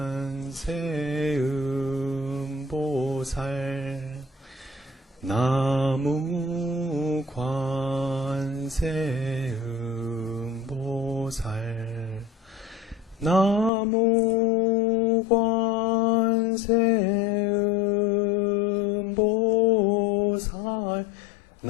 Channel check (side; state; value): right; drops out; at 13.7 s